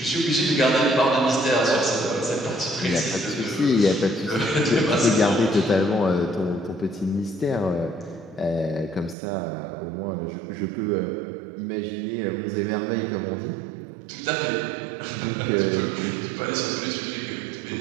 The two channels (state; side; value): drops out; left; at 9.2 s